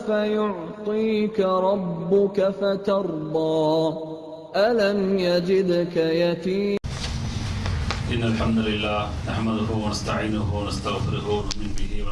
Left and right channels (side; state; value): both; identical; correlation 1.00